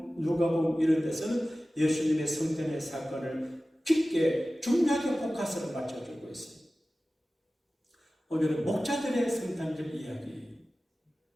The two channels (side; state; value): both; normal; correlation 0.96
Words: 누가복음 이런 데서는 예수님의 성탄의 사건을 깊게 중요하게 포커스를 맞춰주고 있어요. 오늘은 목자들의 성탄절 이야기.